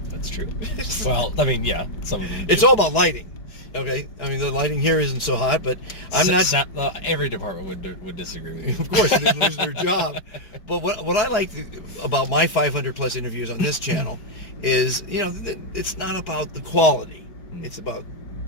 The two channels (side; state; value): right; late; 4.7 ms